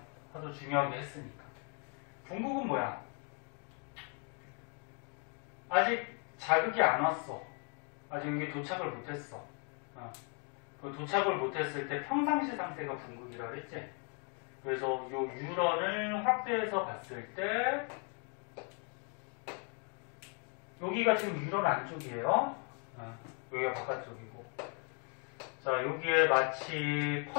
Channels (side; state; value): right; quieter; 38.3 dB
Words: 하도 중요하게 했으니까. 궁극은 뭐야? 아직 자극이 안 왔어. 아직 여기 도착을 못했어. 그 도착을 못했을 때 평상시 상태가 궁극이라고 했지. 그래서 이 유런을 확대해서 봤을 때 여기가 지금 유런 안쪽이에요. 여기가 바깥쪽이고. 자, 여기에 마치